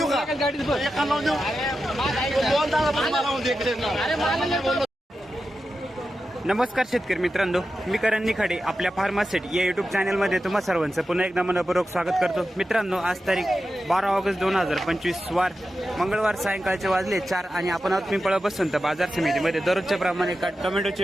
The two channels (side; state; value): both; normal; correlation 0.91